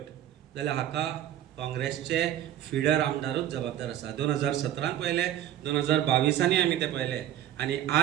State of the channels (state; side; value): quieter; left; 11.9 dB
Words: जाल्यार हाका काँग्रेसचे फिडर आमदारूच जबाबदार आसा. 2017 पयले, 2022 आमी ते पयले. आनी